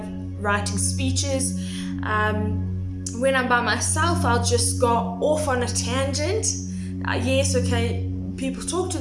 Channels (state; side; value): identical; both; correlation 1.00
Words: writing speeches. When I'm by myself, I'll just go off on a tangent. Yes, okay, people talk to